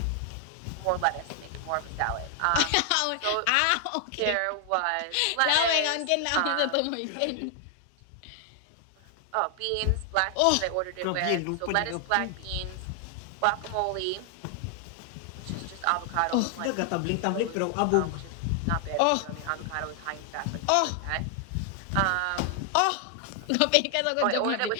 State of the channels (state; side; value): different; both; correlation 0.00